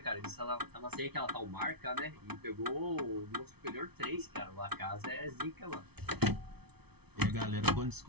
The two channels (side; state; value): left; late; 0.98 ms